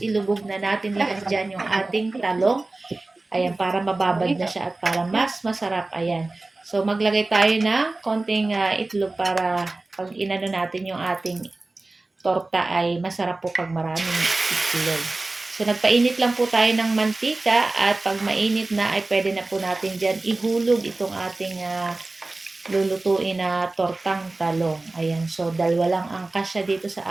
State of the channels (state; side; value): quieter; left; 3.1 dB